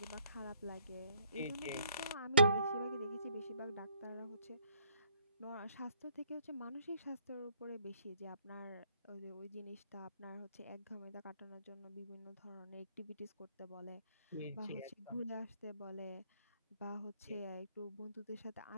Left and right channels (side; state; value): both; inverted; correlation -0.67